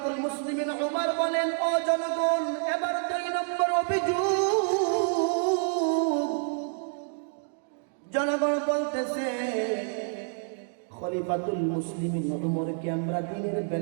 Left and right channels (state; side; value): silent; left; 59 dB below the other